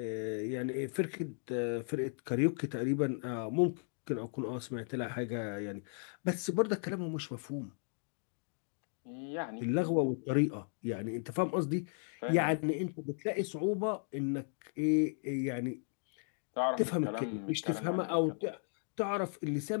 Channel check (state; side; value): silent; right; 54 dB below the other